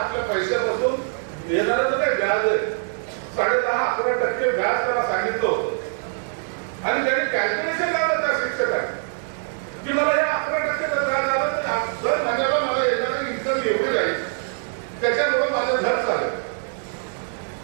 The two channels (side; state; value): left; silent; 63 dB below the other